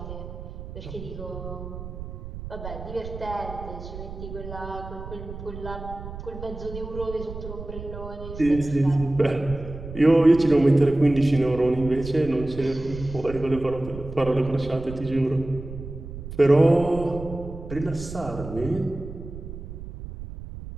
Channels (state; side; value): noise; right; rumble, 11 dB below the sound